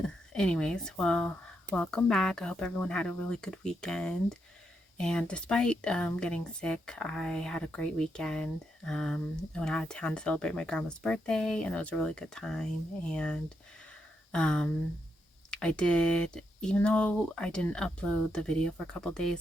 Anyways, well, welcome back. I hope everyone had a really good weekend. And despite getting sick, I had a great weekend. I went out of town to celebrate my grandma's birthday and it was a really good time. And um I did, even though I didn't upload the video for a couple days,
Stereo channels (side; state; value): both; normal; correlation 0.81